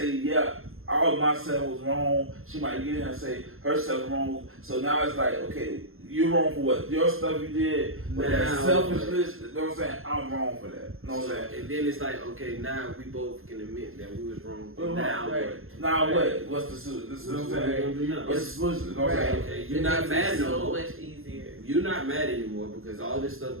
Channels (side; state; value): left; late; 0.61 ms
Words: yeah, all of myself was wrong. She might get in and say herself wrong. So now it's like, okay, you're wrong for what? Your stuff you did, but that selfishness, you know what I'm saying? I'm wrong for that. You know what I'm saying? And then it's like, okay, now we both can admit that we was wrong. Now what? Now what? What's the solution? This is what I'm saying. What's the solution? You know what I'm saying? Okay, you're not mad no more. So much easier. You're not mad anymore because all this